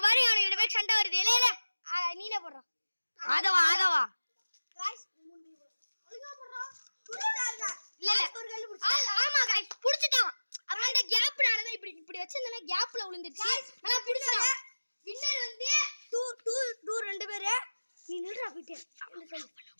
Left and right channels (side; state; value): both; inverted; correlation -1.00